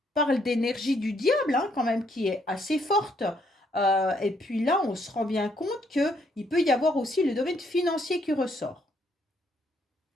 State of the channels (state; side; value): normal; both; correlation 0.71